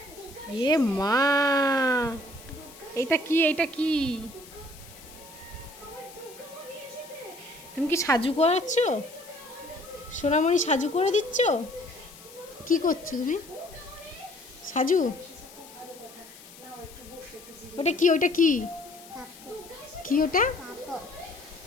এ মা, এটা কি? এটা কি? তুমি কি সাজু করাচ্ছ? সোনামণি সাজু করে দিচ্ছ? কি করছো তুমি? সাজু? ওটা কি? ওটা কি? কি ওটা?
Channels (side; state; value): left; noise; hiss, 19 dB below the sound